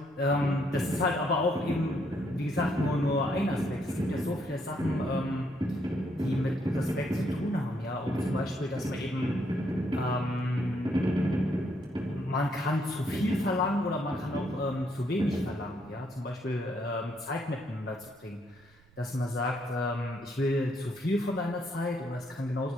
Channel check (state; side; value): noise; right; rumble, 29 dB below the sound